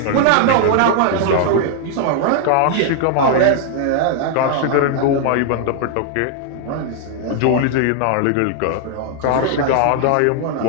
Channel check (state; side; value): different; both; correlation 0.00